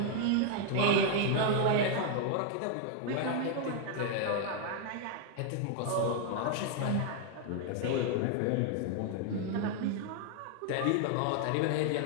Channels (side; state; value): both; different; correlation 0.00